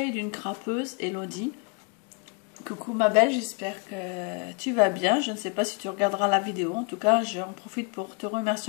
d'une crapeuse, Elodie. Coucou ma belle, j'espère que tu vas bien. Je ne sais pas si tu regarderas la vidéo. En tout cas, j'en profite pour te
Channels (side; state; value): right; quieter; 31.7 dB